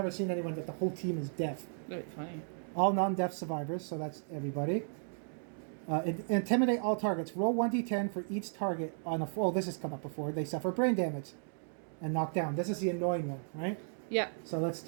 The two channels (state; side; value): silent; left; digital silence